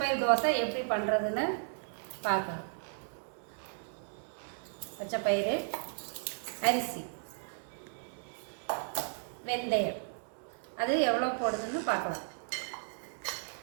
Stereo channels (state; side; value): silent; left; digital silence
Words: தோசை எப்படி பண்ணுறதுன்னு பார்க்கலாம். பச்சைப்பயிறு, அரிசி, வெந்தயம், அது எவ்வளோ போடுறதுன்னு பார்க்கலாம்.